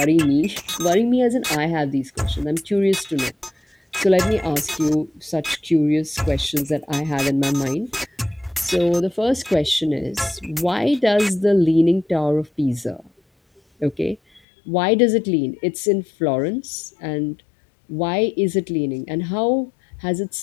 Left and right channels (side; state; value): right; drops out; at 14.4 s